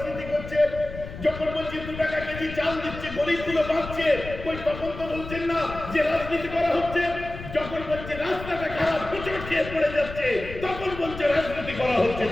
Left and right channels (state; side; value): noise; left; rumble, 11 dB below the sound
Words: করছে। যখন বলছি 2 টাকা কেজি চাল দিচ্ছে, গরিবগুলো বাঁচছে, ওই তখন তো বলছেন না যে রাজনীতি করা হচ্ছে। যখন বলছে রাস্তাটা খারাপ, হোঁচট খেয়ে পড়ে যাচ্ছে, তখন বলছে রাজনীতি করা হচ্ছে,